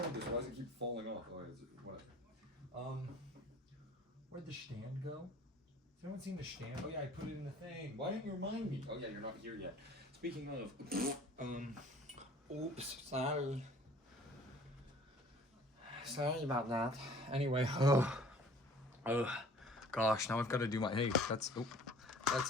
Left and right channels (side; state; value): both; normal; correlation 0.50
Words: this? Why does it keep falling off? Oh, is it, whatever. Where'd the stand go? Has anyone seen the stand? Oh yeah, I put it in the thing. Why didn't you remind me? Oh yeah, you're not here yet. Speaking of, oops, sorry. Sorry about that. Anyway, gosh, now I've got to do my, hey, that's